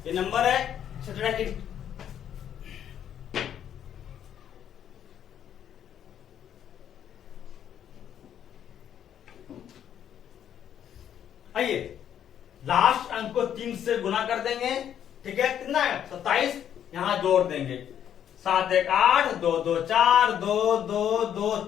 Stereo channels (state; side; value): quieter; right; 9.7 dB